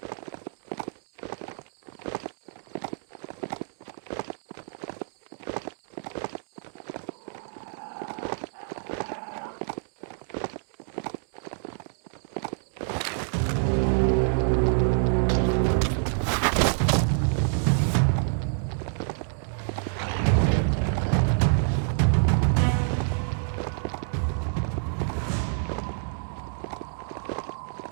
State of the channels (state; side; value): silent; left; digital silence